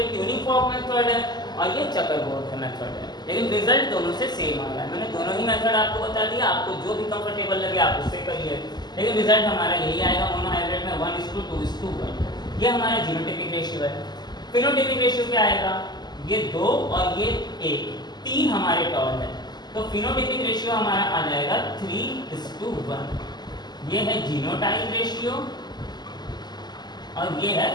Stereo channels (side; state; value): right; late; 0.21 ms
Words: ट्यूनिंग फॉर्क मेथड है और ये चक्कर बोर्ड का मेथड है, लेकिन रिजल्ट दोनों से सेम आ रहा है। मैंने दोनों ही मेथड आपको बता दिया, आपको जो भी कंफर्टेबल लगे आप उससे करिए, लेकिन रिजल्ट हमारा यही आएगा मोनोहाइब्रिड में 1:2:1। ये हमारा जीनोटाइपिक रेशियो है। फिनोटाइपिक रेशियो क्या आएगा, ये 2 और ये 1, 3 हमारे टर्म है, तो फिनोटाइपिक रेशियो हमारा आ जाएगा 3:1। ये है जीनोटाइप रेशियो और ये है